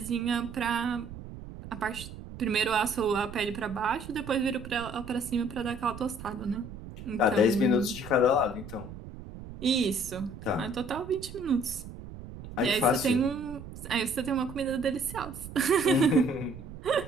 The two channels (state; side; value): noise; right; rumble, 13 dB below the sound